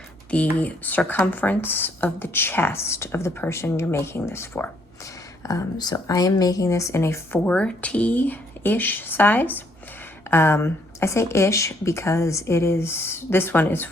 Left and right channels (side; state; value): both; normal; correlation 0.68